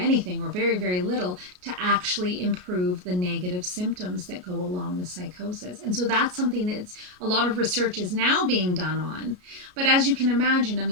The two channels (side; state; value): left; late; 33 ms